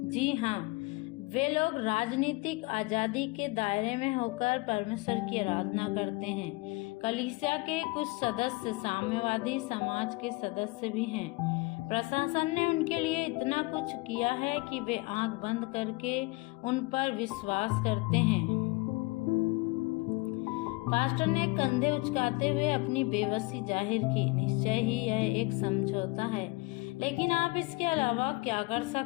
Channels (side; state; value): right; quieter; 24.6 dB